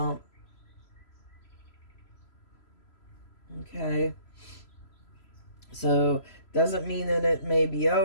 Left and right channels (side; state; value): right; late; 3.0 ms